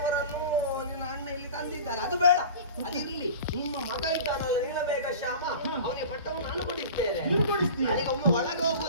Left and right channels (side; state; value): both; inverted; correlation -0.37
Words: ನಿನ್ನ ಅಣ್ಣ ಇಲ್ಲಿ ತಂದಿದ್ದಾರೆ. ಅದು ಬೇಡ, ಅದಿರ್ಲಿ. ನಿಮ್ಮ ಮಗ ಇದ್ದಾನಲ್ಲ ನೀಲಮೇಘ ಶ್ಯಾಮ, ಅವನಿಗೆ ಪಟ್ಟವನ್ನು ನಾನು ಕೊಡಿಸ್ತೇನೆ. ನನಗೆ ಒಮ್ಮೆ ಒಳಗೆ